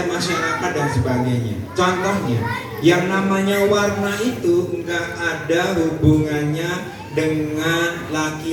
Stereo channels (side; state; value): both; identical; correlation 1.00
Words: masyarakat dan sebagainya. Contohnya, yang namanya warna itu nggak ada hubungannya dengan